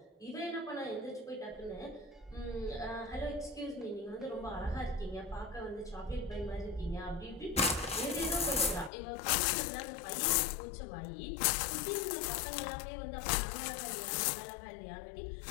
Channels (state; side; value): drops out; right; at 8.9 s